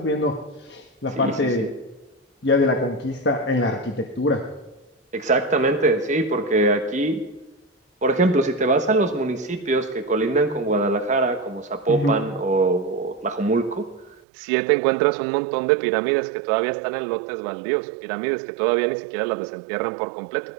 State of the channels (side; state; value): left; drops out; at 14.2 s